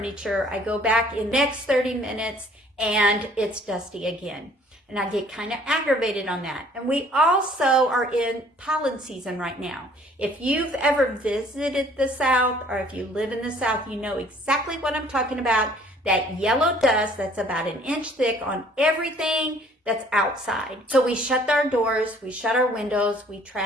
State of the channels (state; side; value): normal; both; correlation 0.57